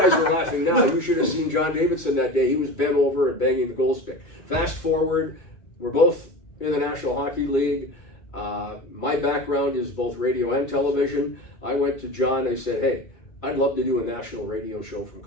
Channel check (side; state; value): right; late; 2.3 ms